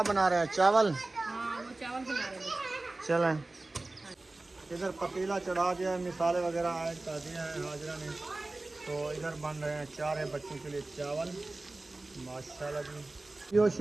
बना रहे हैं? चावल। हाँ वो चावल बना रहे हैं। चलें इधर पतीला चढ़ा दिया है, मिसाले वगैरह ऐड कर दिए हैं हाजरा ने। तो इधर बन रहे हैं 4 बच्चों के लिए चावल। माशाल्लाह जी यो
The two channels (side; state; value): left; quieter; 3.0 dB